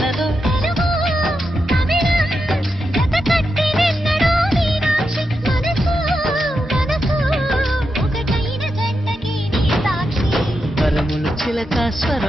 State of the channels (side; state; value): both; normal; correlation 0.86